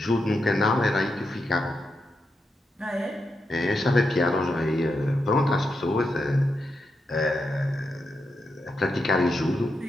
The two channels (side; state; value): both; normal; correlation 0.85